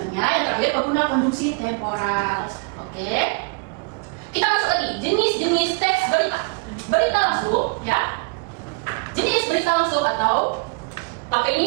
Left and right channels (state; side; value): quieter; left; 30.8 dB